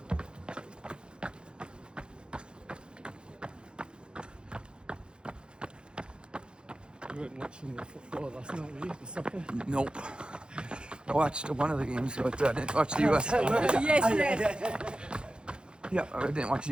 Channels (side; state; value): left; late; 0.051 ms